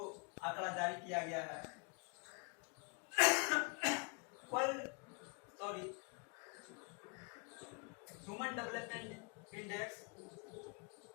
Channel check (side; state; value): right; quieter; 36.9 dB